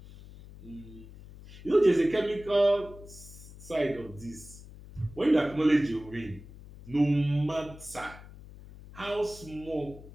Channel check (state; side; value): noise; left; hum, 17 dB below the sound